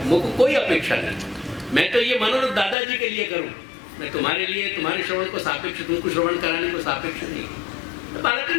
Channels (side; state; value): right; drops out; at 2.8 s